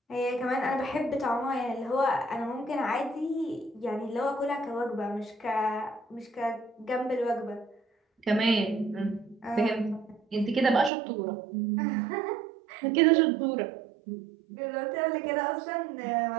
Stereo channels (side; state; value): left; drops out; at 10.9 s